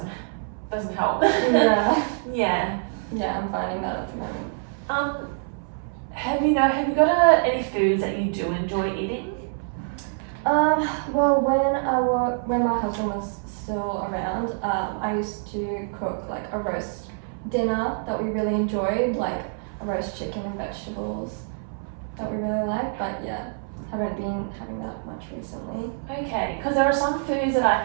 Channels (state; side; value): silent; left; 60 dB below the other